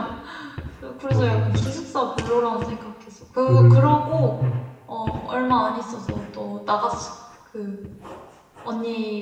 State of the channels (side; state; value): both; identical; correlation 1.00